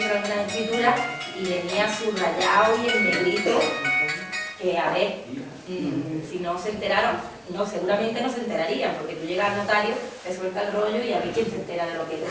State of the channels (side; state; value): both; identical; correlation 1.00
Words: algunas escrituras y venía subrayado y en negrito, que a ver, si no se enteraron, no, seguramente no se enterarían, porque tú llegas al notario, te suelta el rollo y a ver quién se entera de lo que te